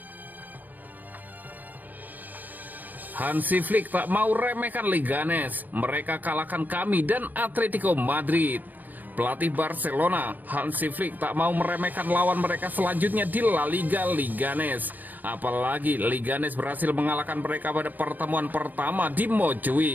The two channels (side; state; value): left; late; 0.085 ms